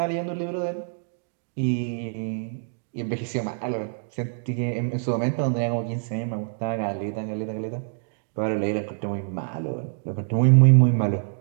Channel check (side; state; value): left; silent; digital silence